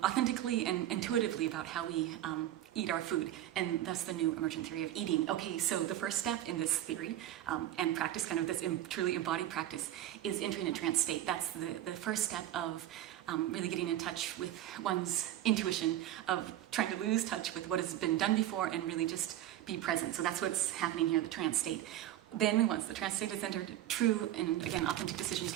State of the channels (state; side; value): quieter; left; 12.9 dB